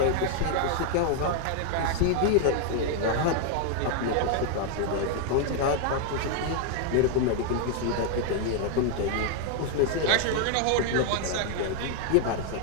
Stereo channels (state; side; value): different; both; correlation 0.00